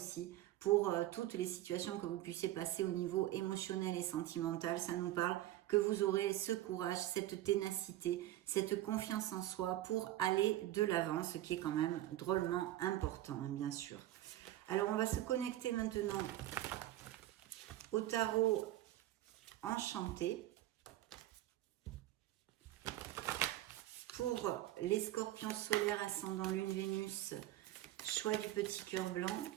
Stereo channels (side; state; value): left; quieter; 14.7 dB